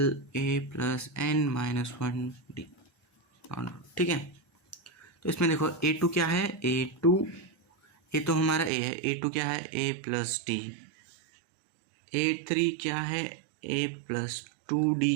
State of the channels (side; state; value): left; drops out; at 8.7 s